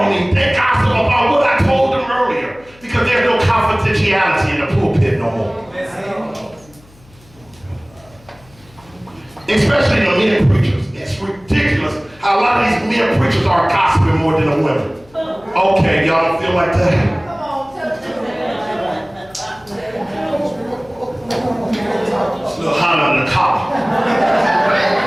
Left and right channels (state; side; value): noise; left; hum, 27 dB below the sound